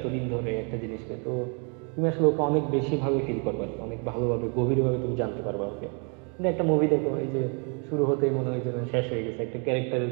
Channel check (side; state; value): left; quieter; 36.8 dB